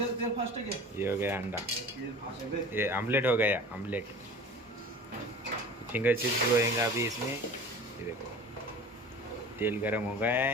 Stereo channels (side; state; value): both; normal; correlation 0.40